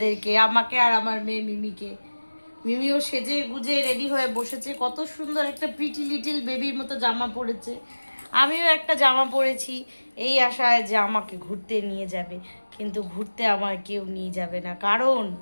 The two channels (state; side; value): inverted; both; correlation -1.00